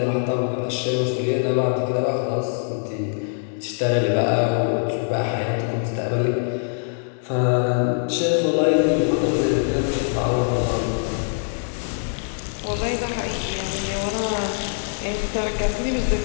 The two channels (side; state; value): right; silent; digital silence